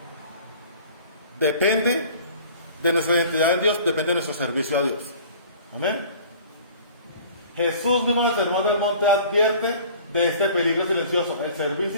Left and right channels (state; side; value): inverted; both; correlation -0.47